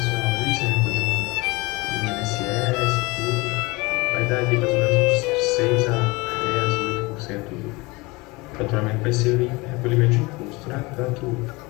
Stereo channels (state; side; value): quieter; right; 24.2 dB